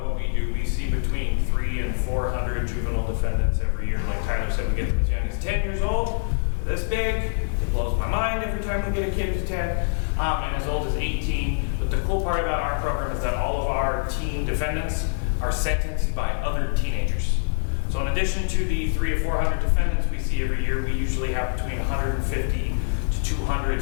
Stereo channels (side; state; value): right; silent; 62 dB below the other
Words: we do, we see between 300 and 400 juvenile defendants every year. Like Tyler said, we get them as young as 10 years old, this big. It blows my mind every time we get a kid who's 10, and as old as 18. But the cool part about our program is that all of our teen defendants are sentenced by other teenagers. So in addition to the 300 or 400 defendants we see every year, we usually have between 150 to 200